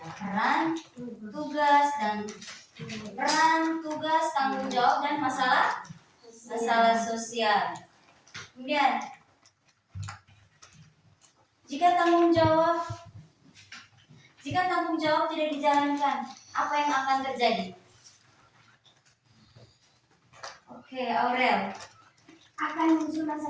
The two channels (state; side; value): identical; both; correlation 1.00